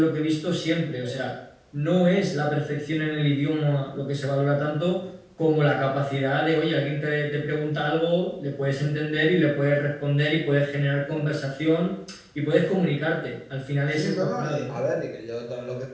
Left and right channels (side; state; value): both; identical; correlation 1.00